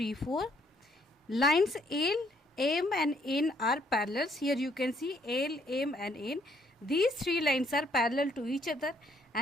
Lines L, M and N are parallel. Here you can see L, M and N. These three lines are parallel to each other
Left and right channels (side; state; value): both; normal; correlation 0.67